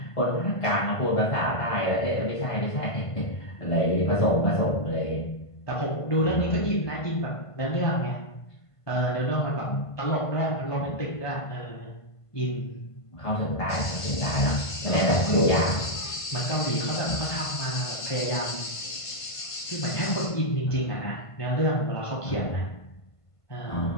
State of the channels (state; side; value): late; right; 1.5 ms